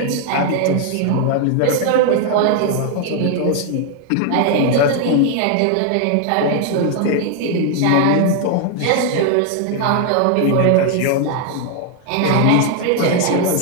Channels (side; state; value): both; different; correlation 0.00